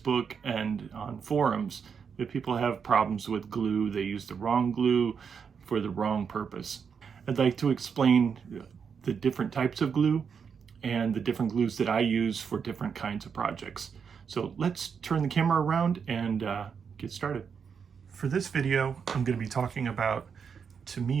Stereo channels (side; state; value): left; quieter; 6.5 dB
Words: and on forums that people have problems with glue. They use the wrong glue for the wrong purpose. I'd like to explain the different types of glue and the different glues that I use for different kinds of projects. So let's turn the camera around and get started. For this video, I'm going to be talking about